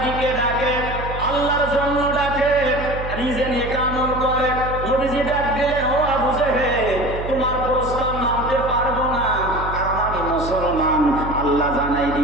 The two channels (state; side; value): noise; right; hum, 8 dB below the sound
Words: দিকে ডাকে, আল্লাহর জন্য ডাকে, নিজে নিয়ে আমল করে। নবীজি ডাক দিলেন, ও আবু জেহেল, তোমার প্রস্তাব মানতে পারবো না, কারণ আমি মুসলমান। আল্লাহ জানাই